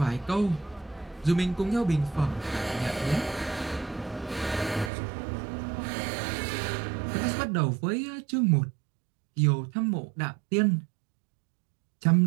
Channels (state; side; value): drops out; left; at 4.9 s